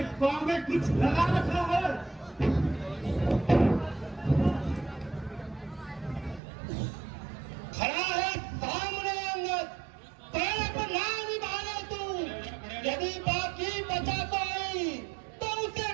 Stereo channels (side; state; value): left; drops out; at 6.4 s